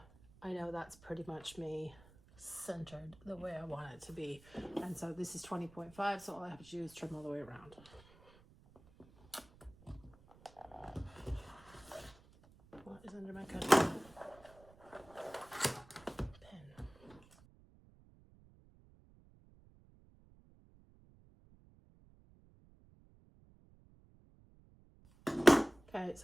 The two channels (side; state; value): right; noise; rumble, 24 dB below the sound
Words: I know that's pretty much me centered the way I want it to be. And so this is 20.5, so all I have to do is trim all the way around. What is under my cutting pen? Okay,